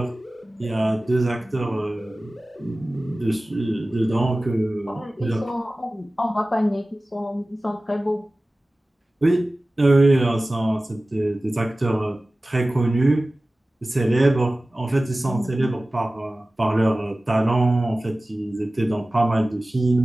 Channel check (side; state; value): both; normal; correlation 0.97